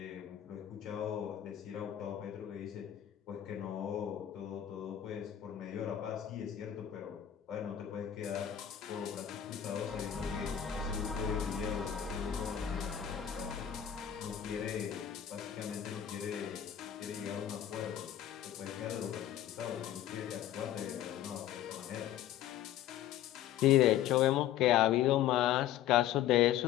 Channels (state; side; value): quieter; right; 11.0 dB